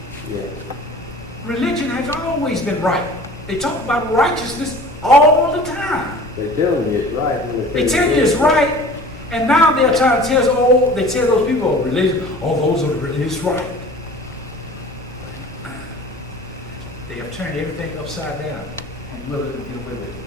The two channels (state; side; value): normal; both; correlation 0.43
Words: Yeah. Religion has always been right. They talk about righteousness all the time. They tell you it's right. They tell you it's right, and now they're trying to tell us, oh, they tell those people, oh, religion, oh, those are the religious right. They have turned everything upside down and willing to get away with